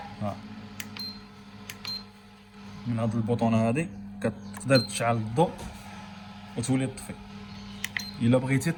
ها، من هاد البوطونه هادي كتقدر تشعل الضوء وتولي تطفي. الا بغيتي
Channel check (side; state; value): both; identical; correlation 1.00